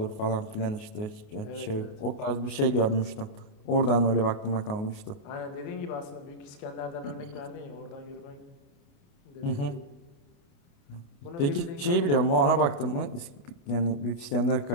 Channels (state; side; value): late; right; 28 ms